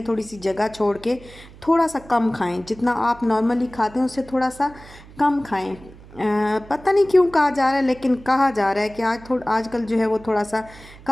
थोड़ी सी जगह छोड़ के थोड़ा सा कम खाएं, जितना आप नॉर्मली खाते हैं उससे थोड़ा सा कम खाएं। पता नहीं क्यों कहा जा रहा है, लेकिन कहा जा रहा है कि आजकल जो है वो थोड़ा सा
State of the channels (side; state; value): right; noise; hum, 20 dB below the sound